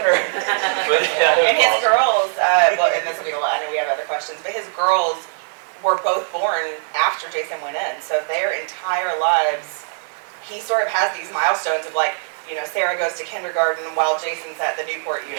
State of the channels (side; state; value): left; silent; digital silence